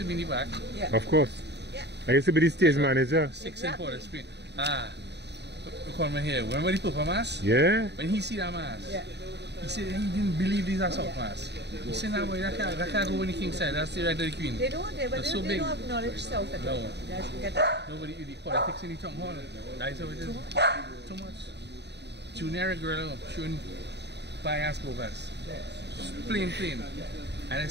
be in the back. Yeah. Of course. Yeah. I used to be the stage manager. 6 in Port of Spain. We come here. Remember the Papa Mass? Yeah. When he see that mass, Yeah. he said he didn't believe these are South Mass. He said, "No, boy, that can't go on the King side. That's the right of the Queen." They don't, they That's so they big. don't acknowledge South at all. No. Guys, get that? Nobody do the politics in the town hall. That's how it is. Too much. Junior girl showing bias bogus. Plain. And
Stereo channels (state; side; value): late; left; 0.50 ms